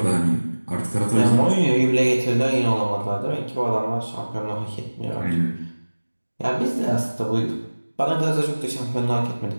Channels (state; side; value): inverted; both; correlation -1.00